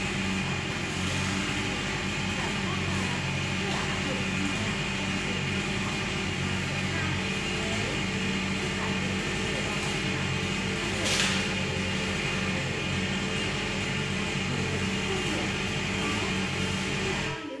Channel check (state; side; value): identical; both; correlation 1.00